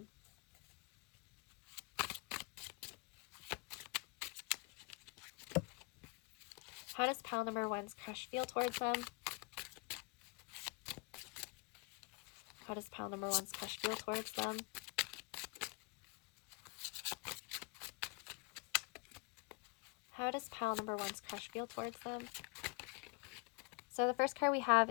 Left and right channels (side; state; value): right; quieter; 31.3 dB